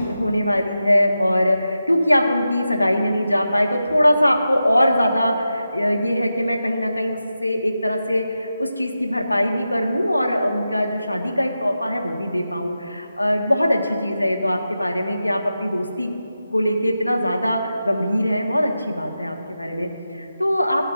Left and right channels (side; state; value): both; inverted; correlation -0.90